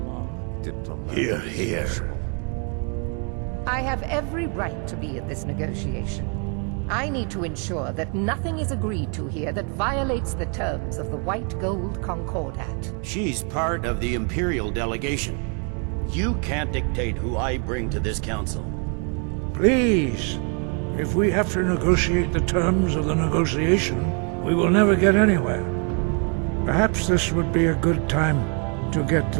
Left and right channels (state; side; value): quieter; left; 38.7 dB